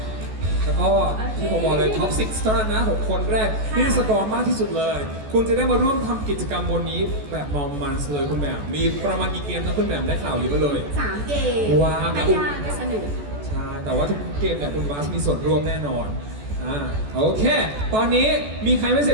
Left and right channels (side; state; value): left; late; 14 ms